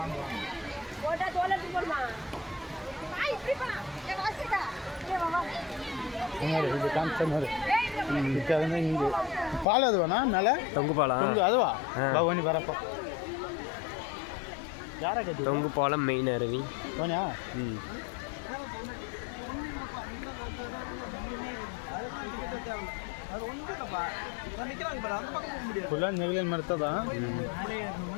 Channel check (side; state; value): right; drops out; at 9.7 s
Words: போட்டா தோலத்து போடுமா இது காமிச்ச இங்கே பால் அதுவாண்ணா மேலே தொங்கு பாலம் அதுவா பவனி வரப்போ யாரை கட்டி தொங்கு பாலம் மெயின் அருவி போனியா? ಫುಲ್ಲ ನೆಗಲೇನು ಮಾಡ್ತದ